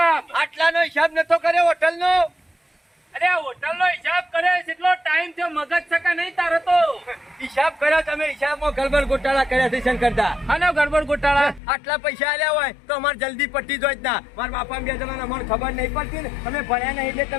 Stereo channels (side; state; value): right; drops out; at 11.6 s